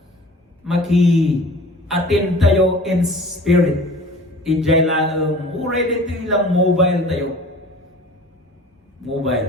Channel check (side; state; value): both; normal; correlation 0.44